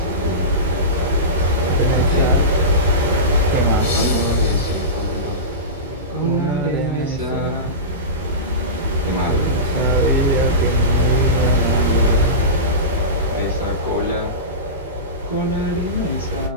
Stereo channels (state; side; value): normal; both; correlation -0.20